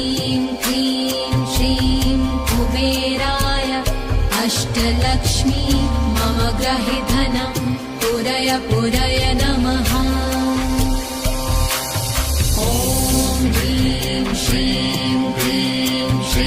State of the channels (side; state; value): both; identical; correlation 1.00